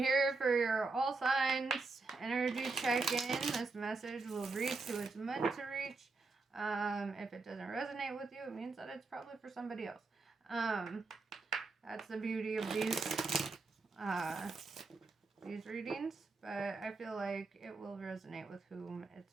for your all signs energy check-in. This message will reach who it's meant to reach. If it doesn't resonate with you, it means that it's probably for somebody else. That's the beauty of these readings, but I feel like it will resonate with whom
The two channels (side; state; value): left; quieter; 3.9 dB